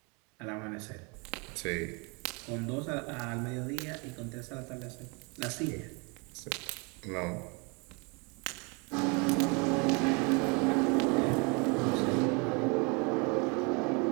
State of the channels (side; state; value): left; quieter; 31.3 dB